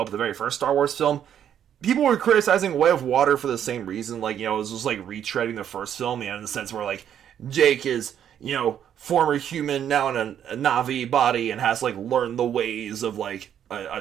the very first Star Wars film. People were criticizing Way of Water for the same reason, it was just, retreading the first film, in the sense where, Jake is, former human, now in a Na'vi body, and has, learned the ways of, a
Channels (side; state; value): left; quieter; 9.6 dB